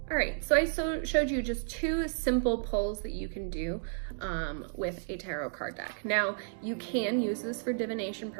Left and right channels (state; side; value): silent; left; digital silence